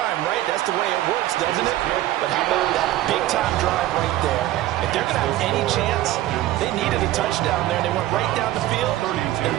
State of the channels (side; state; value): left; quieter; 14.8 dB